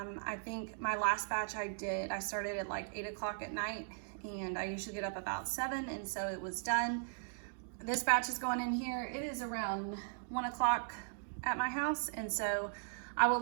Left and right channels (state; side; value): silent; left; digital silence